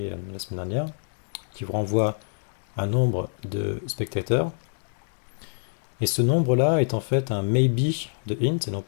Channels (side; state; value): right; silent; digital silence